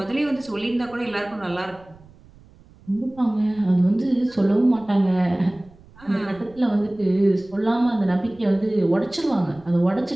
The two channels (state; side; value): noise; right; rumble, 25 dB below the sound